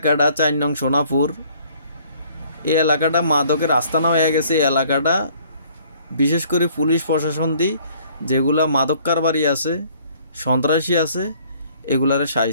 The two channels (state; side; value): inverted; both; correlation -0.58